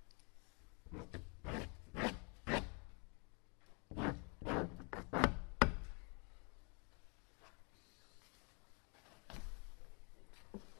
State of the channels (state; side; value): quieter; right; 35.6 dB